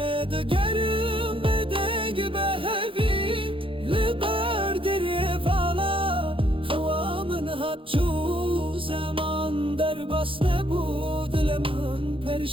دگرم بدنگ به هفی لبر دریه والا خوامن هات جو زمان در بس نبود لمن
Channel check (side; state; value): left; late; 0.25 ms